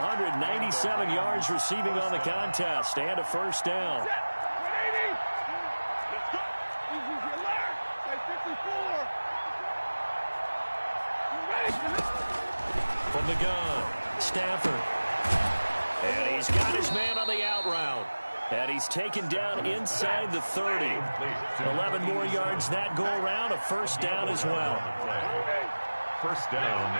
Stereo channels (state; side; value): inverted; both; correlation -1.00